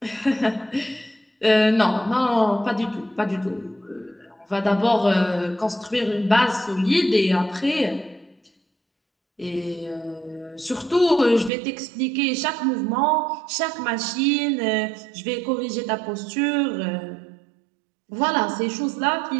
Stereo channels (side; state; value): left; drops out; at 11.5 s